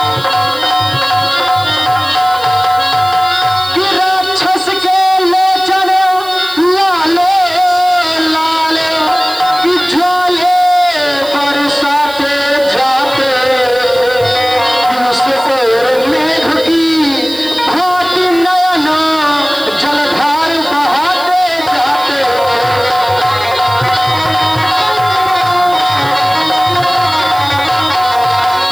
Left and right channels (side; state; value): right; noise; hiss, 18 dB below the sound